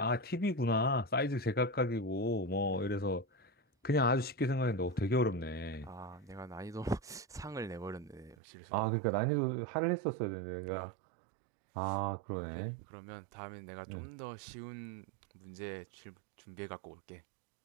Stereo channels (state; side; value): drops out; left; at 8.3 s